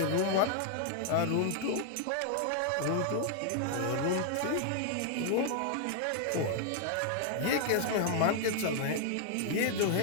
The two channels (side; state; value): both; different; correlation 0.00